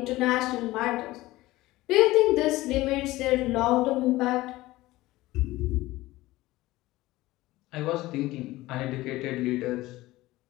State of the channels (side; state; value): right; quieter; 18.1 dB